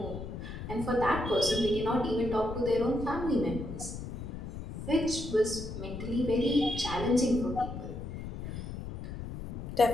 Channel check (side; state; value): left; noise; rumble, 7 dB below the sound